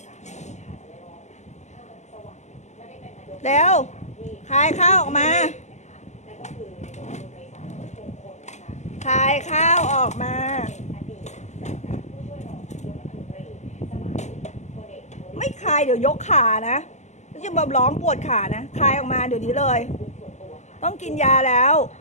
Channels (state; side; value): late; right; 0.33 ms